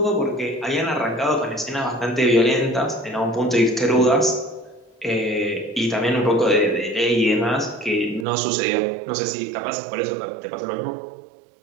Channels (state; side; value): drops out; left; at 8.2 s